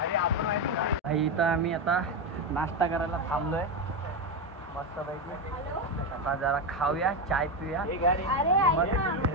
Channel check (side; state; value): both; normal; correlation 0.11